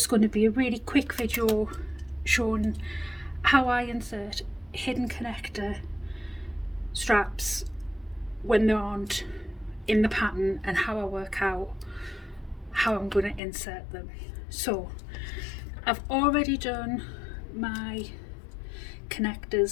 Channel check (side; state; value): right; drops out; at 13.4 s